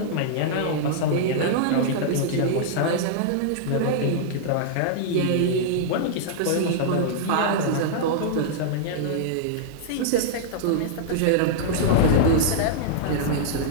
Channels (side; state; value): both; different; correlation -0.01